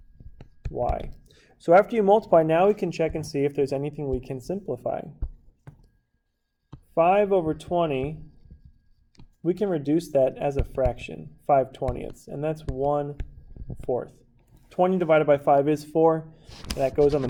y. So after you multiply, now we can check and see if there's anything we can simplify. 5 over 20, we can reduce that as a fraction, 5/20ths, and that's 1/4. 20 divided by 5 is 4. That goes on the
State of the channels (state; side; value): identical; both; correlation 1.00